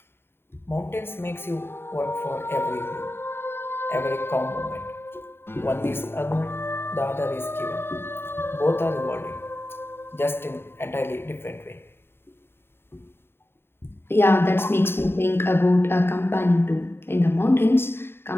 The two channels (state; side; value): late; right; 0.11 ms